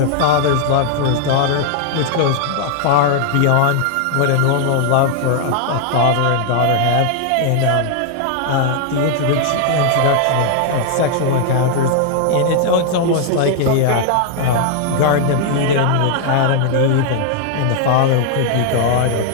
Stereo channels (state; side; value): different; both; correlation 0.00